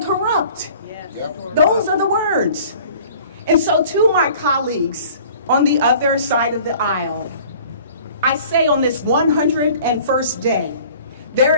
corrupt. Yes. Those are the words. And so to my colleagues on the other side of the aisle, I say on this 101st day,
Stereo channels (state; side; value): inverted; both; correlation -0.49